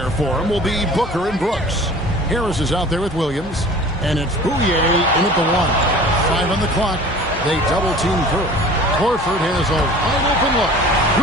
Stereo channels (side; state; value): both; normal; correlation 0.44